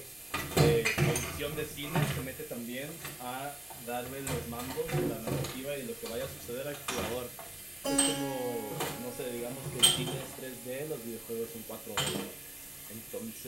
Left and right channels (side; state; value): right; noise; hum, 27 dB below the sound